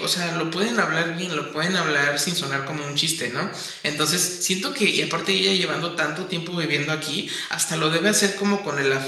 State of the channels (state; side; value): identical; both; correlation 1.00